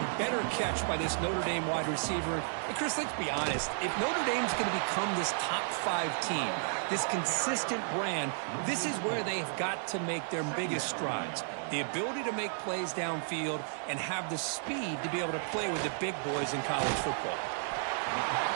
better catch by this Notre Dame wide receiver. And Chris, let's be honest. If Notre Dame's going to become this top 5 team, this consistent brand, this is where they've got to make their biggest strides. The ability to make plays downfield and have the speed to be able to play with the big boys in college football.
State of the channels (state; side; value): silent; left; digital silence